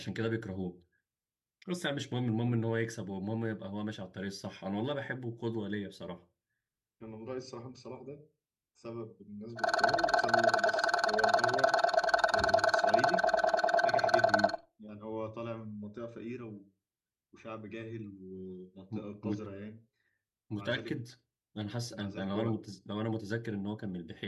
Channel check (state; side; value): identical; both; correlation 1.00